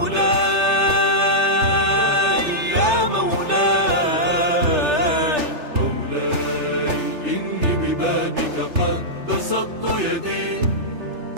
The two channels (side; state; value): left; late; 3.3 ms